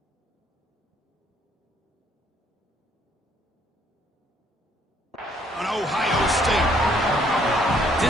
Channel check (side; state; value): both; normal; correlation 0.65